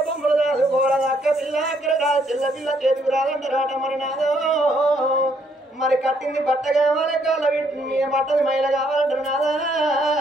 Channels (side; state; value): both; normal; correlation 0.70